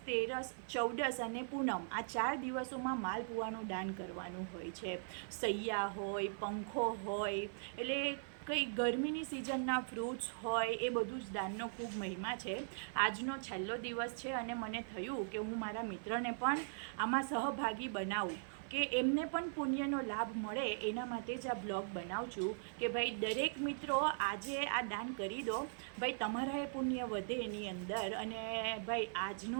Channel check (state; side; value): silent; left; 51 dB below the other